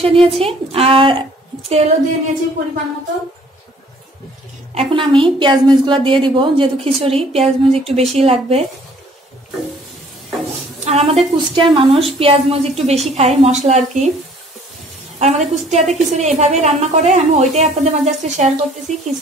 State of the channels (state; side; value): normal; both; correlation 0.57